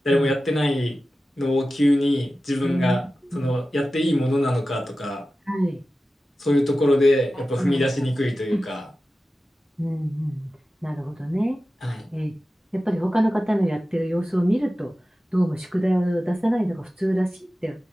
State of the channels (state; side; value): normal; both; correlation 0.94